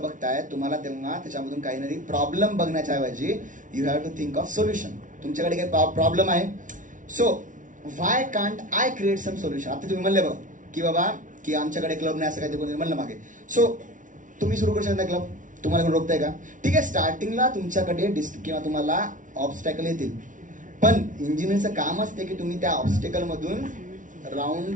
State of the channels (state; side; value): late; left; 0.37 ms